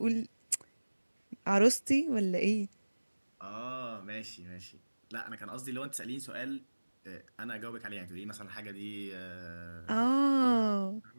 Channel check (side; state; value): both; inverted; correlation -1.00